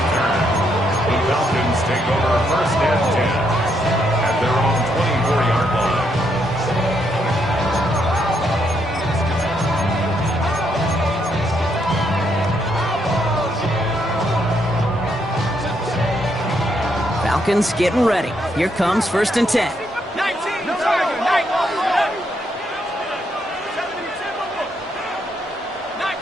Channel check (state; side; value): normal; both; correlation 0.76